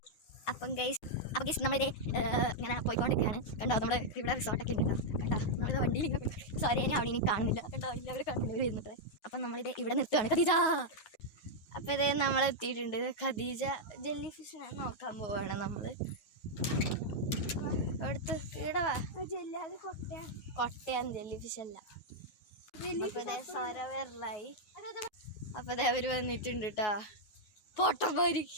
അപ്പം ഗൈസ് നമ്മളിത് ഇങ്ങനെ പോയിക്കൊണ്ടിരിക്കുകയാണ്. കണ്ടോ, നമ്മുടെ ഇവിടെ റിസോർട്ടൊക്കെ ഉണ്ട്. കണ്ടോ, നമ്മളിത് വണ്ടിയിൽ ഇങ്ങനെ സോറി, ഞാൻ അവിടെ കാണുന്നില്ല. കണ്ടോ, എല്ലാവരും കാണുന്നില്ല വരുന്നത്. അപ്പം നമ്മളിത് ഇവിടെ നിർത്തുകയാണ്. ഖദീജ, അപ്പം ഇത് നമ്മളെത്തിയിട്ടുണ്ട്. ഖദീജ ജെല്ലി ഫിഷിനെ നോക്കാൻ പോവാണ് നമ്മൾ. എടുത്ത് ഈടവാ, കൊട്ടയാണ് ജെല്ലി ഫിഷ് അല്ല. സരവരലായി. അപ്പം ഇത് അവർ വന്നിട്ടുണ്ട് കേട്ടോ, പൊട്ടന്മാര്.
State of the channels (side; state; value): right; late; 9.5 ms